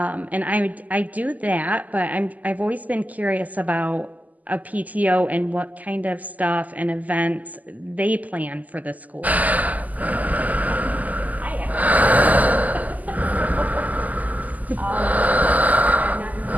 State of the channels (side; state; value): left; late; 0.079 ms